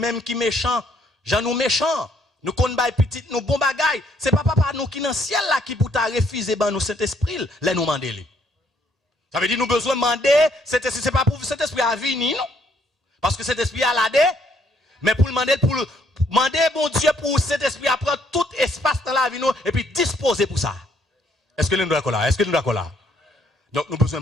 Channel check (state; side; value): normal; both; correlation 0.68